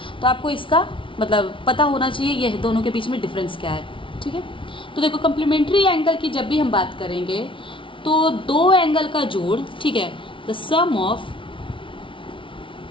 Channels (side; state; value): right; late; 0.25 ms